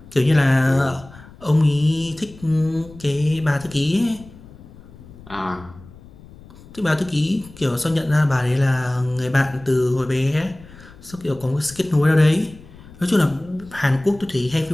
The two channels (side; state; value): left; noise; rumble, 21 dB below the sound